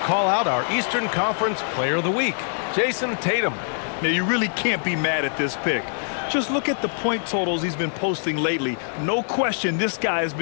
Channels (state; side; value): silent; right; digital silence